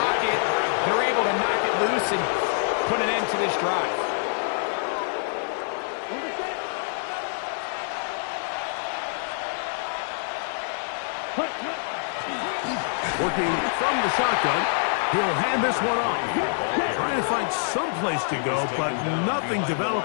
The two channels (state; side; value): silent; right; 61 dB below the other